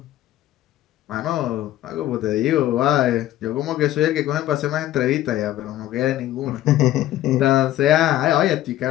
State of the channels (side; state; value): right; quieter; 13.8 dB